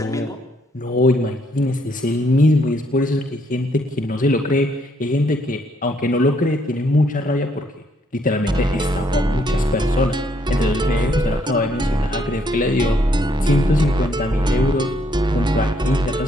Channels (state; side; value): normal; both; correlation 0.70